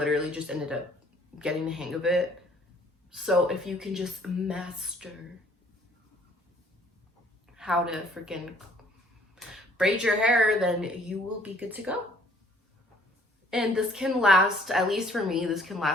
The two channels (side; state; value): both; normal; correlation 0.59